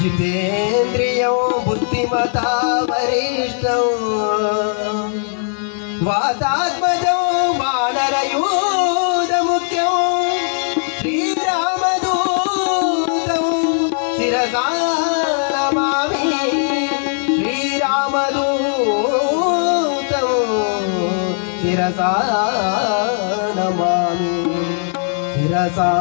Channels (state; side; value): silent; right; 65 dB below the other